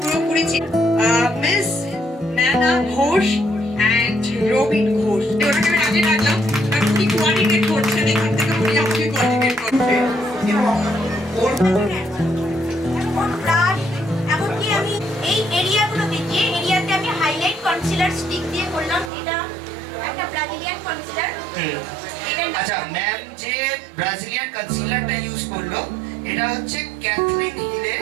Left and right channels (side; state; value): left; drops out; at 19.1 s